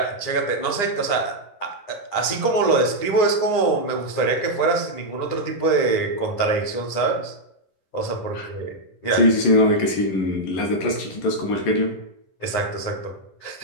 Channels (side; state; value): right; late; 9.8 ms